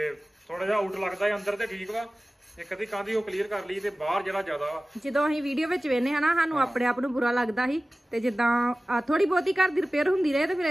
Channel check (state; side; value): normal; both; correlation 0.97